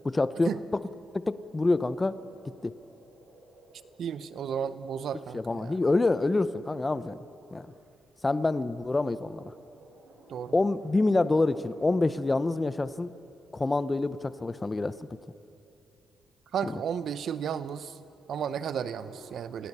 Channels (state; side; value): normal; both; correlation 0.93